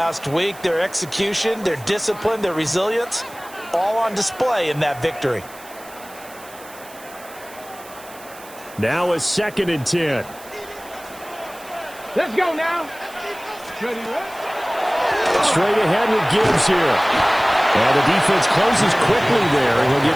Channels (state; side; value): noise; right; hiss, 20 dB below the sound